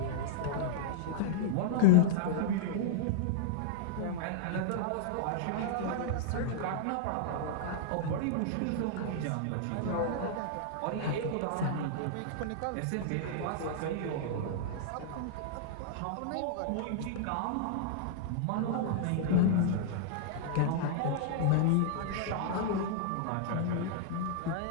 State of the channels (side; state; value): both; different; correlation -0.01